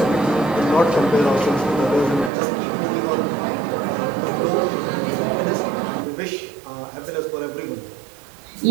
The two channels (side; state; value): left; drops out; at 2.3 s